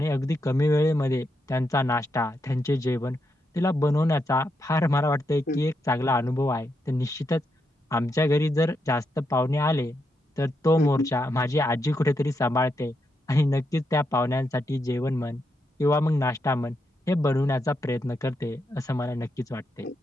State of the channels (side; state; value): both; normal; correlation 0.82